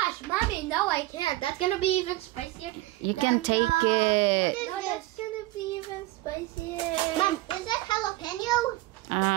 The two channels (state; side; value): quieter; left; 18.1 dB